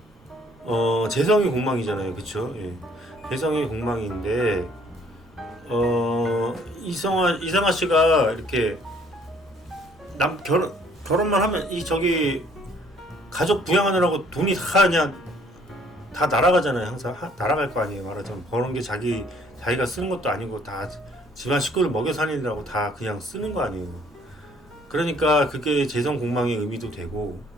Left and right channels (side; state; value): both; normal; correlation 0.60